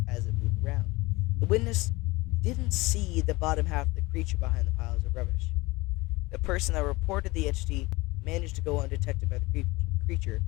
as it moved around. The witness didn't see the bottom half of the creature behind the piles of rubbish. The person that reported the entity managed to go undetected by the creature,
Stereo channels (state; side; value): quieter; right; 22.2 dB